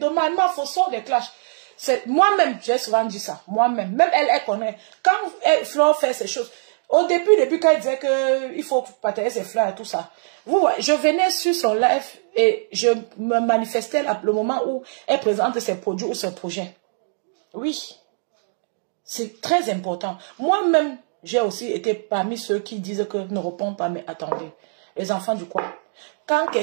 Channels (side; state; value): left; silent; digital silence